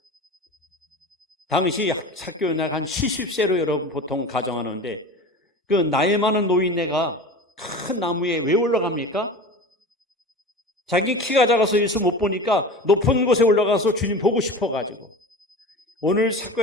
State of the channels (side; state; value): both; normal; correlation 0.33